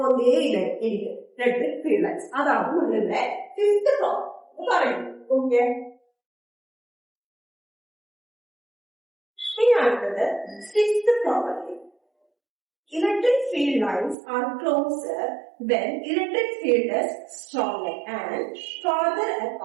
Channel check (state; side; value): drops out; left; at 14.2 s